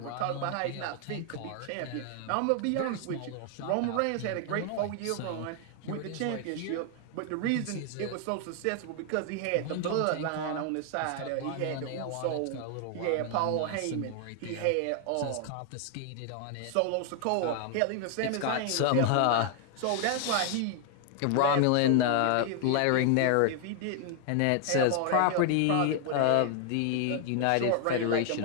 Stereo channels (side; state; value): both; different; correlation 0.00